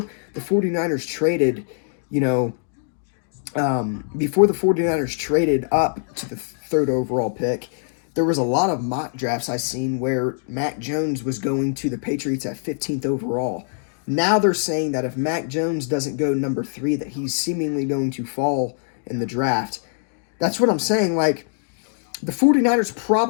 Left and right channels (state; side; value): silent; right; digital silence